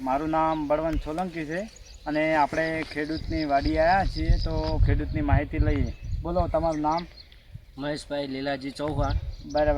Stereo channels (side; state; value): both; identical; correlation 1.00